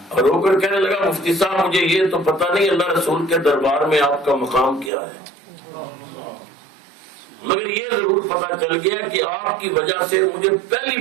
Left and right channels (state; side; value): drops out; left; at 4.9 s